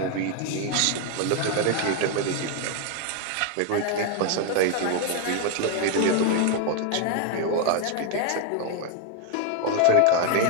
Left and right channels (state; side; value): different; both; correlation 0.01